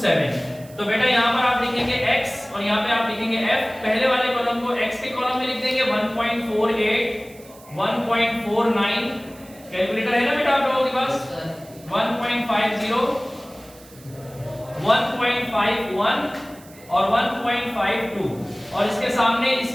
7। तो बेटा यहाँ पर आप लिखेंगे x और यहाँ पे आप लिखेंगे f। पहले वाले कॉलम को x के कॉलम में लिख देंगे 1.48, 1.49, कैलकुलेटर है ना बेटा आप लोगों के पास? 1.50, 1.51 और 1.52 और इसके सामने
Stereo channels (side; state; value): right; noise; hiss, 23 dB below the sound